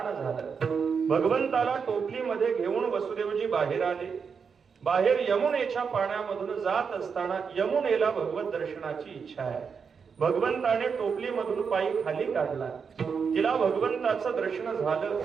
झालं. भगवंताला टोपलीमध्ये घेऊन वसुदेवजी बाहेर आले. बाहेर यमुनेच्या पाण्यामधून जात असताना यमुनेला भगवत दर्शनाची इच्छा आहे. भगवंताने टोपलीमधून पायी खाली काढला. तिला भगवंताचं दर्शन झालं.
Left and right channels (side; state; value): left; quieter; 6.0 dB